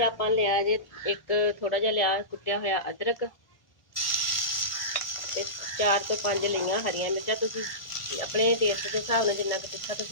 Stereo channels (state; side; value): late; right; 1.2 ms